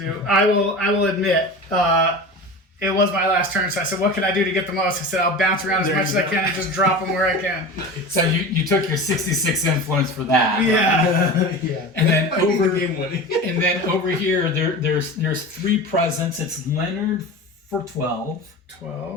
I will admit, it was my last turn, so I said, what can I do to get the most? I said, I'll bounce around as There much you as I go. can and just drop them where I can. So you took your 66 influence for that. Yeah. Yeah. And then That might be the over game winning. and then over here there's 3 presents. It's Leonard for 12.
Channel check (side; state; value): both; normal; correlation 0.31